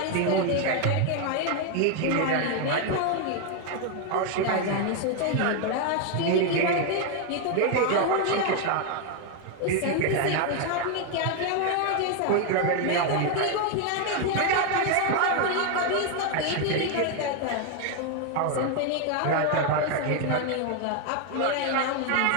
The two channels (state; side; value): different; both; correlation 0.01